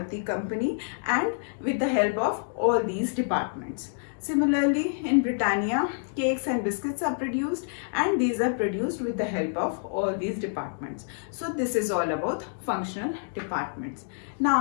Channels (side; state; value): right; silent; digital silence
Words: company and with the help of all these departments. Similarly, in Britannia, cakes and biscuits are produced and these are produced with the help of all these departments. So this is all about functional departments.